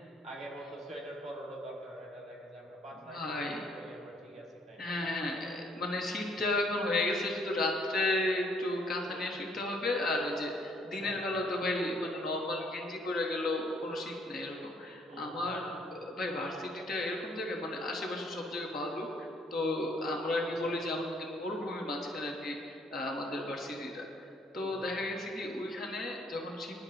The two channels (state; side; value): normal; both; correlation 0.65